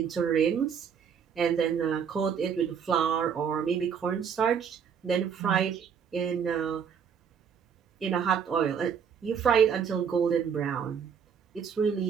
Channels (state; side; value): quieter; left; 7.2 dB